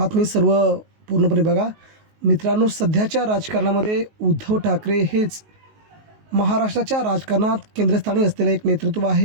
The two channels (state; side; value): late; left; 19 ms